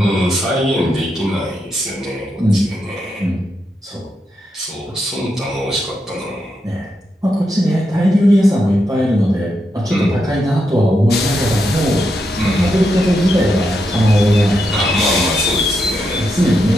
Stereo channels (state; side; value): normal; both; correlation 0.83